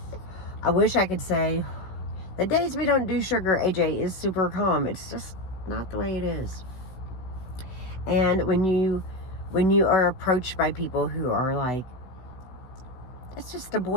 I wish I could say the days we don't do sugar, AJ is super calm. It's just not the way it is. And when you are approached by people who are like, it's just a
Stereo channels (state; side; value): late; right; 16 ms